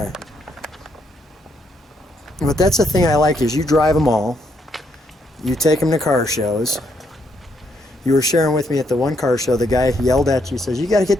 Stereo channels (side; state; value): both; normal; correlation 0.74